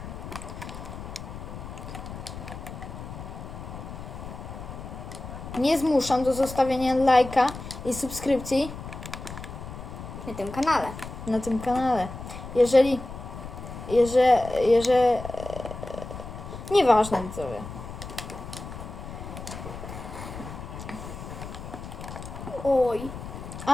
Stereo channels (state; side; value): noise; left; rumble, 10 dB below the sound